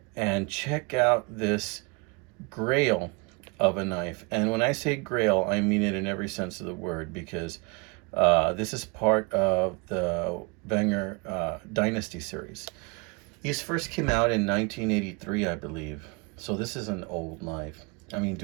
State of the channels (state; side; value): quieter; left; 30.8 dB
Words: and check out this grail of a knife. And when I say grail, I mean it in every sense of the word because this is part of the Wenger Dynasty series. These first came out in 1983, I believe. So this is an old knife. I mean,